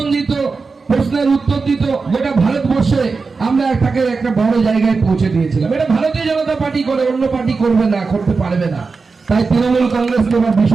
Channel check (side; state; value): left; quieter; 4.4 dB